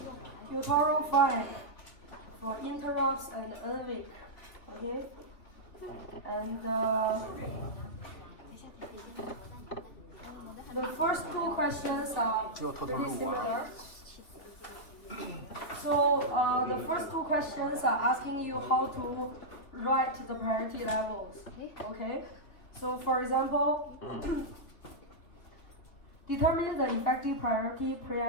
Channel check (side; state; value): right; late; 3.4 ms